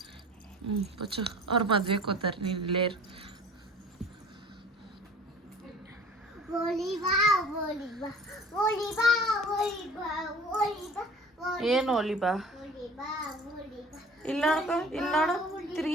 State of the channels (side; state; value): both; normal; correlation 0.46